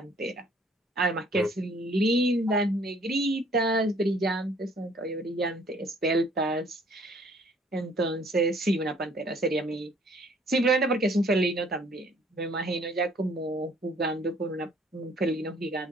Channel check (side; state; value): both; normal; correlation 0.59